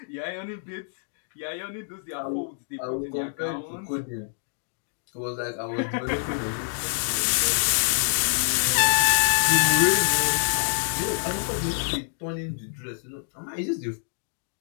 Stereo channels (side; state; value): right; silent; digital silence